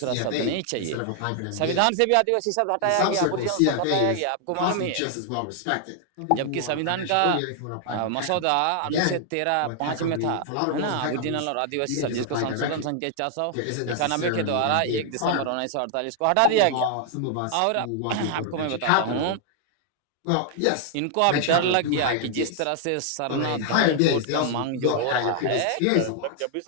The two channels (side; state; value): both; different; correlation 0.00